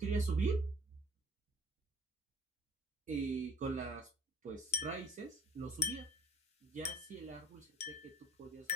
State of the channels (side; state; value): both; normal; correlation 0.50